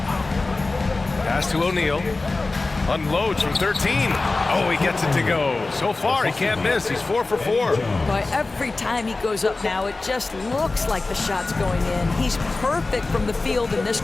Pass to O'Neal. Unloads from 13. Oh, he gets it to go. So far, he can't miss. He's 4 for 4. Boy, every time he goes up now, it just looks like the shot's going in. He's perfect from the field in this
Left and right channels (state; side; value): quieter; right; 3.4 dB